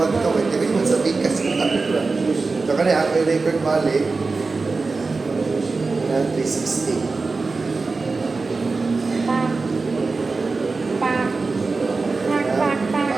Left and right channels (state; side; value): quieter; left; 4.0 dB